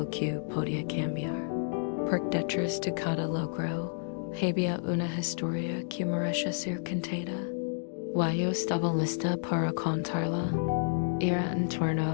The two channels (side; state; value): right; silent; digital silence